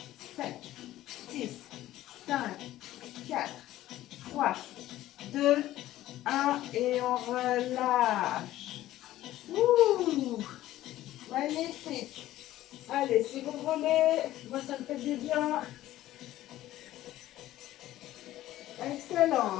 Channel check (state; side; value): quieter; right; 14.6 dB